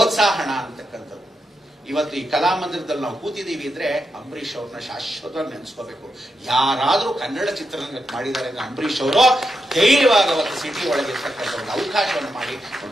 ಅಂತಕ್ಕಂಥದ್ದು. ಇವತ್ತು ಈ ಕಲಾಮಂದಿರದಲ್ಲಿ ನಾವು ಕೂತಿದ್ದೀವಿ ಅಂದ್ರೆ ಅಂಬರೀಷ್ ಅವ್ರನ್ನ ಶಾಶ್ವತವಾಗಿ ನೆನೆಸ್ಕೋಬೇಕು. ಯಾರಾದ್ರೂ ಕನ್ನಡ ಚಿತ್ರರಂಗಕ್ಕೆ ಮಾಡಿದ್ದಾರೆ ಅಂದ್ರೆ ಅಂಬರೀಷ್ ಅವರು ಧೈರ್ಯವಾಗಿ ಅವತ್ತು ಸಿಟಿ ಒಳಗಿರ್ತಕ್ಕಂಥ ಒಂದು ಅವಕಾಶವನ್ನು ಮಾಡಿ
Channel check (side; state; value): both; normal; correlation 0.85